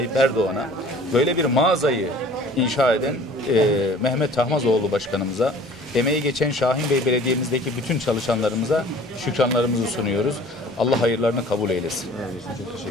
Erdoğan'a, böyle bir mağazayı inşa eden Mehmet Tahmazoğlu Başkanımıza, emeği geçen Şahinbey Belediye'mizdeki bütün çalışanlarımıza şükranlarımızı sunuyoruz. Allah hayırlarını kabul eylesin. Çok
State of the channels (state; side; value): normal; both; correlation 0.49